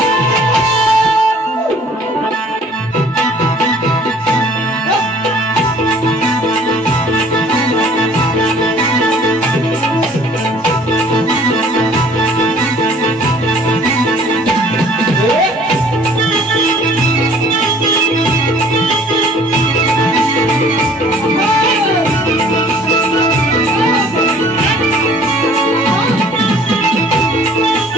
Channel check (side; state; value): both; normal; correlation 0.54